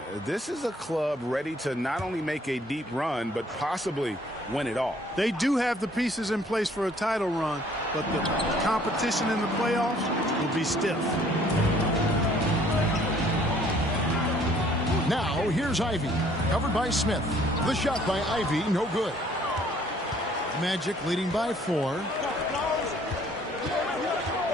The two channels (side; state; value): both; normal; correlation 0.60